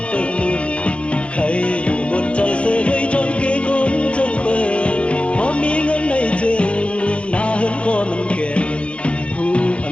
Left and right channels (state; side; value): late; right; 0.060 ms